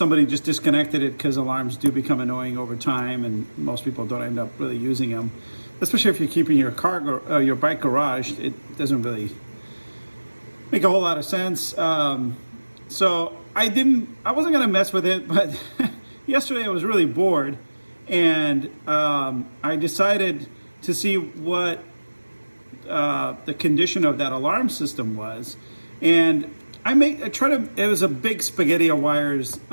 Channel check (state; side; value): inverted; both; correlation -1.00